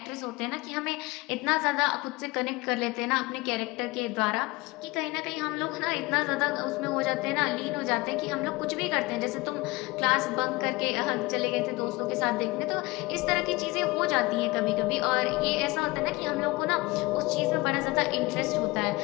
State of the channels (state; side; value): quieter; right; 22.5 dB